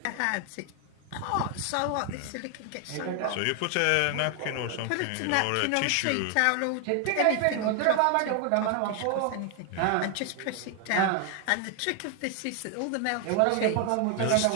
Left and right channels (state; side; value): different; both; correlation 0.00